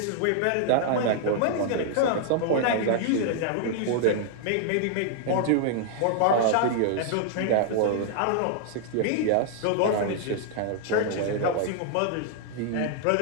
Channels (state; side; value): different; both; correlation -0.01